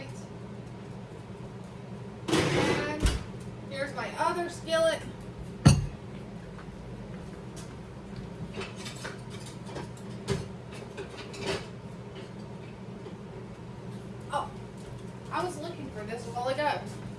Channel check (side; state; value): both; identical; correlation 1.00